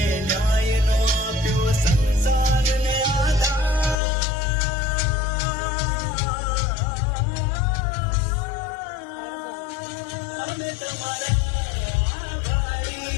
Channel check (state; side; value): drops out; right; at 4.0 s